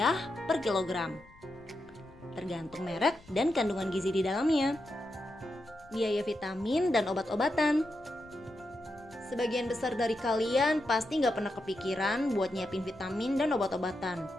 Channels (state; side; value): noise; left; rumble, 25 dB below the sound